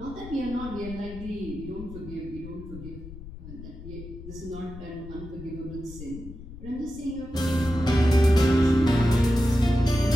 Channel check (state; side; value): noise; left; rumble, 14 dB below the sound